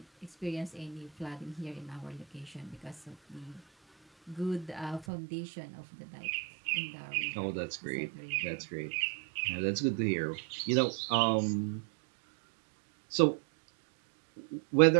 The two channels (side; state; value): left; drops out; at 5.1 s